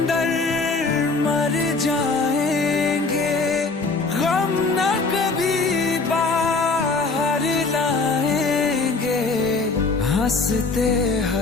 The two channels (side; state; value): right; quieter; 3.9 dB